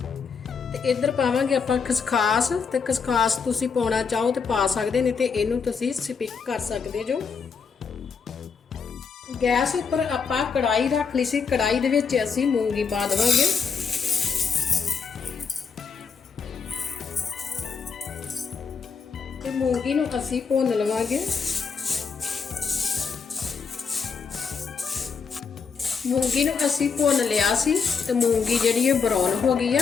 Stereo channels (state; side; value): quieter; right; 5.7 dB